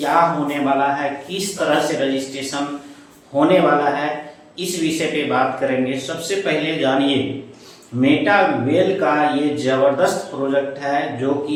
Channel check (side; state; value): both; identical; correlation 1.00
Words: होने वाला है, किस तरह से रजिस्ट्रेशन होने वाला है, इस विषय पे बात करेंगे। सबसे पहले जानिए मेटा वेल का ये जबरदस्त प्रोजेक्ट है जो